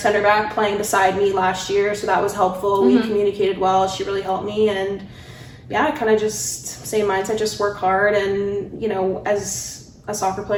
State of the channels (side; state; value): both; identical; correlation 1.00